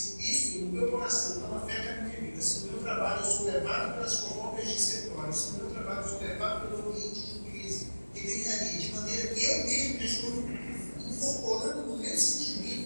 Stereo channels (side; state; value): both; inverted; correlation -1.00